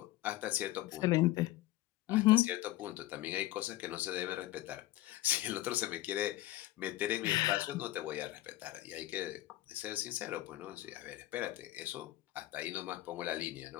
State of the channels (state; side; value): quieter; right; 16.3 dB